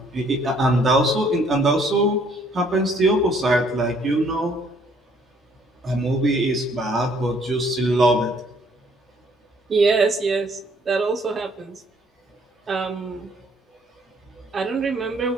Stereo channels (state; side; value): normal; both; correlation 0.63